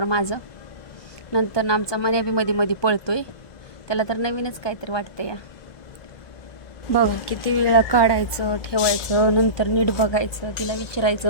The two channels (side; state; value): right; late; 1.2 ms